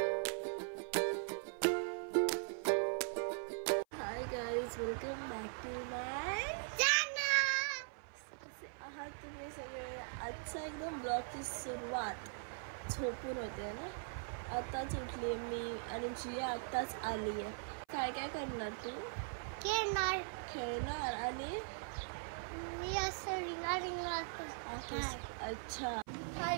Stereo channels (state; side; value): silent; left; 51 dB below the other